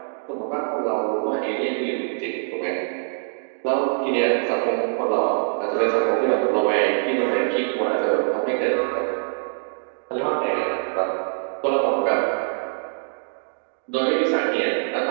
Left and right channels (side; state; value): left; silent; digital silence